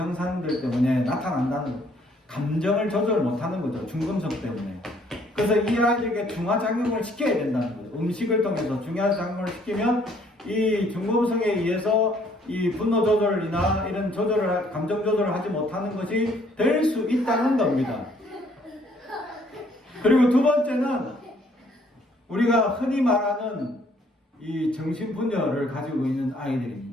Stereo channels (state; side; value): normal; both; correlation 0.63